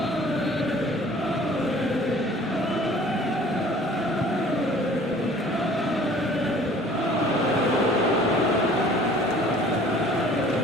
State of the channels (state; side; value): normal; both; correlation 0.51